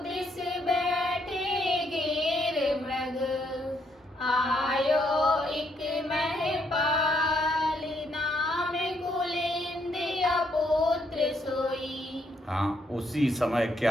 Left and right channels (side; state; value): both; normal; correlation 0.73